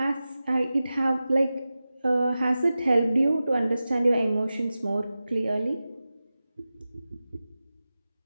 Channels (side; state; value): both; inverted; correlation -0.94